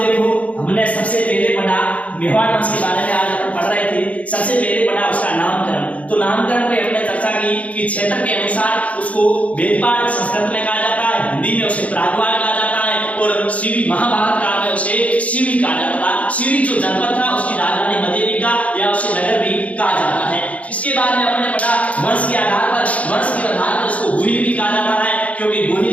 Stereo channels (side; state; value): right; late; 0.067 ms